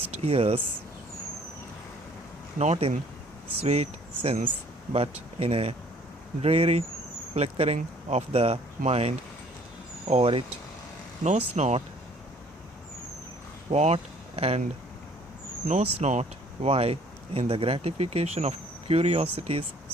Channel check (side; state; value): both; normal; correlation 0.57